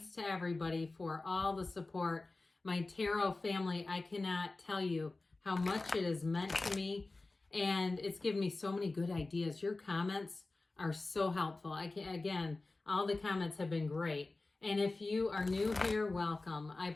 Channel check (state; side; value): quieter; right; 3.3 dB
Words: to everybody for all the support. My tarot family, I cannot tell you how much it has meant to me, and it's given me so many good ideas. Your comments are so helpful. Again, all the comments have been great. And if you are new here, welcome. I